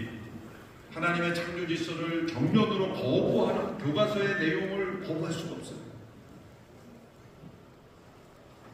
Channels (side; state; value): both; identical; correlation 1.00